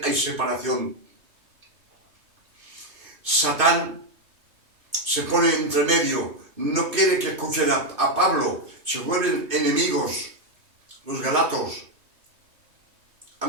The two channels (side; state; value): left; late; 2.5 ms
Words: hay separación. Satán se pone entre medio, no quiere que escuchen a Pablo, se vuelven enemigos, los galatos.